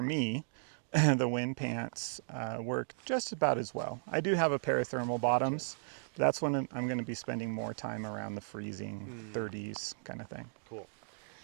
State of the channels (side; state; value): left; silent; digital silence